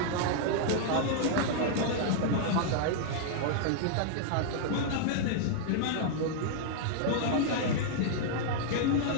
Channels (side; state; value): both; different; correlation -0.01